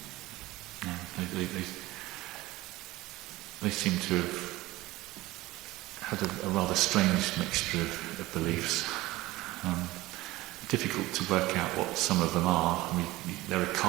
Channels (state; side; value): quieter; left; 18.6 dB